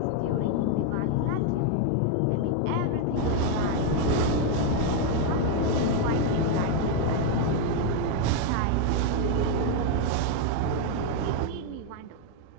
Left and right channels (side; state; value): both; different; correlation 0.01